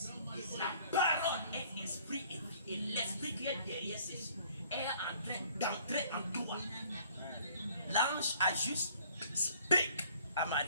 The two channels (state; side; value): inverted; both; correlation -0.56